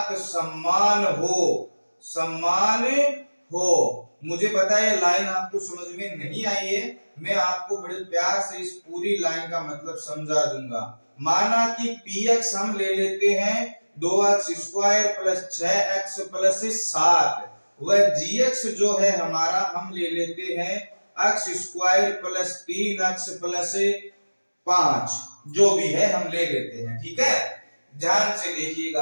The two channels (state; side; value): inverted; both; correlation -1.00